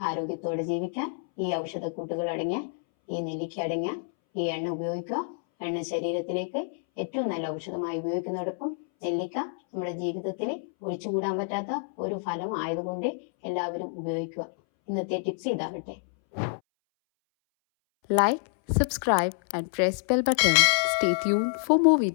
ജീവിക്കാൻ ഈ ഔഷധക്കൂട്ടുകൾ അടങ്ങിയ ഈ നെല്ലിക്ക അടങ്ങിയ ഈ എണ്ണ ഉപയോഗിക്കുക. എണ്ണ ശരീരത്തിലേക്ക് ഏറ്റവും നല്ല ഔഷധമായി ഉപയോഗിക്കുന്നതോടൊപ്പം നെല്ലിക്ക നമ്മുടെ ജീവിതത്തിൽ ഒഴിച്ചുകൂടാൻ പറ്റാത്ത ഒരു ഫലം ആയതുകൊണ്ട് എല്ലാവരും ഉപയോഗിക്കുക. ഇന്നത്തെ tips ഇതാകട്ടെ. Like, subscribe and press bell button. Stay tuned for more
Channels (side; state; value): right; silent; 59 dB below the other